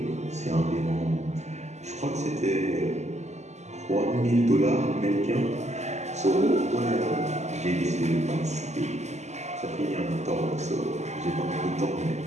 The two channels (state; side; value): late; left; 0.33 ms